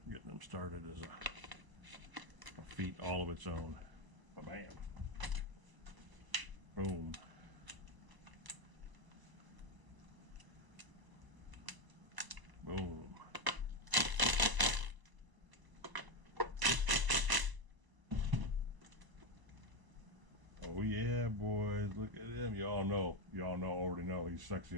getting them started is a feat all of its own. Bam. Boom. Boom. Oh yeah, boys, look at him. Y'all already know he's sexy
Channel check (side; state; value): left; late; 1.0 ms